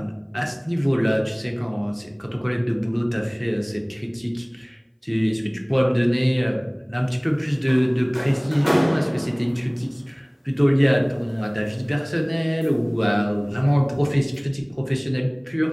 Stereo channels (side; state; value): both; identical; correlation 1.00